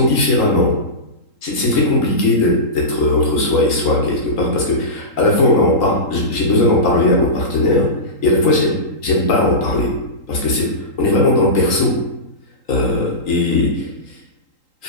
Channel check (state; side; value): late; right; 3.8 ms